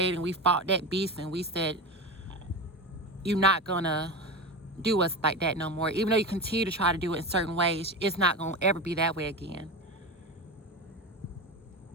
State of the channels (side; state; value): both; normal; correlation 0.24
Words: and we fought that beast, and we said, you're not gonna do us like that no more. Even though you continue to try to do it in certain ways, it's not gonna ever be that way again.